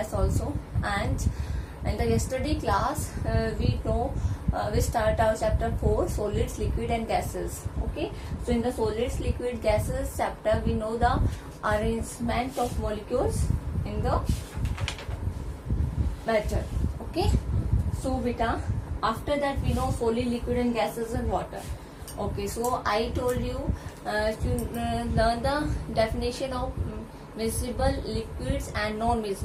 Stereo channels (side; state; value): both; identical; correlation 1.00